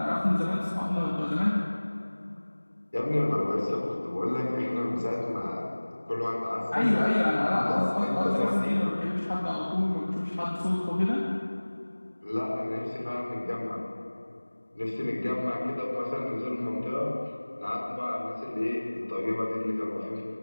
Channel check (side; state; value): both; inverted; correlation -1.00